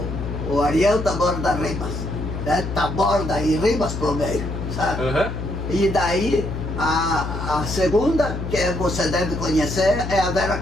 Ariel Taborda Ribas, né? Taborda e Ribas pro meio, sabe? Uhum. E daí a segunda, que você deve conhecer, é a Vera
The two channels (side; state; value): left; noise; hum, 5 dB below the sound